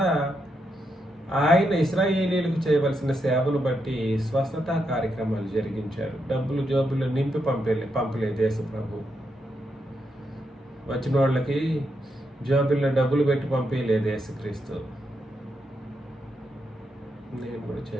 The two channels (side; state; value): both; normal; correlation 0.82